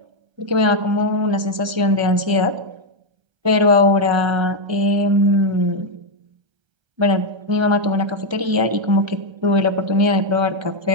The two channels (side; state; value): left; late; 1.3 ms